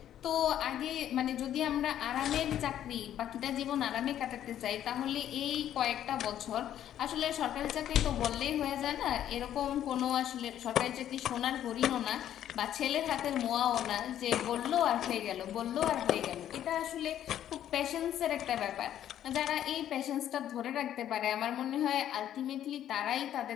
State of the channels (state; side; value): quieter; right; 11.1 dB